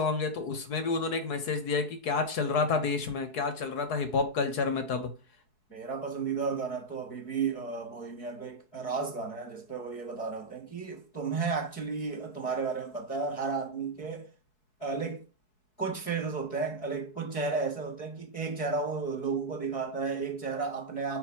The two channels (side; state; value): right; late; 4.7 ms